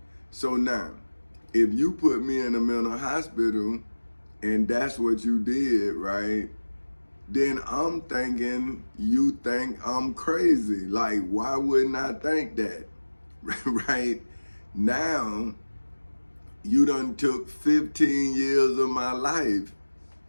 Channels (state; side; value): inverted; both; correlation -1.00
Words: So now, if you put me in a mental hospital and that's what you did, right? Then I'm thinking you think I'm crazy. Like, why wouldn't I think that? Right? Now, you done took 15 years of my life,